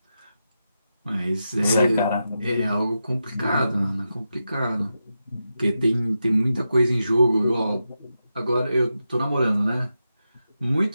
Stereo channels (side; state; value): both; inverted; correlation -0.88